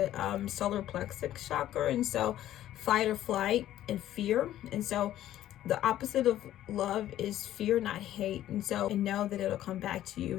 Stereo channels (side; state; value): right; quieter; 12.8 dB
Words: solar plexus chakra, and so fight or flight and fear. And so the opposite of love is fear, not hate. And so know that it'll come back to you